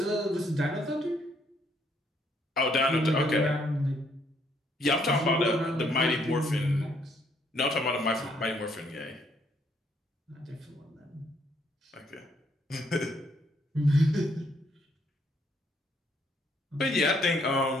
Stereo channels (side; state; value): both; normal; correlation 0.69